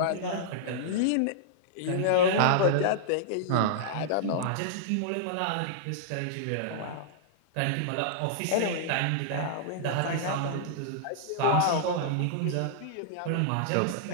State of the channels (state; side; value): different; both; correlation -0.02